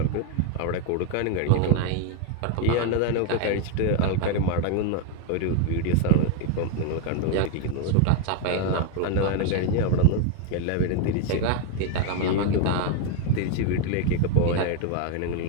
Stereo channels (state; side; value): different; both; correlation 0.01